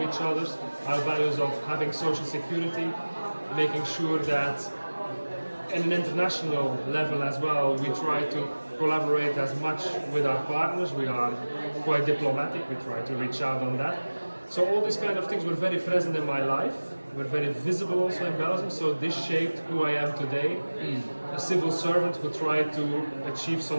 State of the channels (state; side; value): inverted; both; correlation -1.00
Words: each other, our values of having social security, making sure that at an international level as well, we try to collaborate as much with our partners. We are quite diplomatic, we try to reach out on that. So all these kind of things were very present in my life, were very visible also in Belgium, so this shaped who I am today. A civil servant who tried to achieve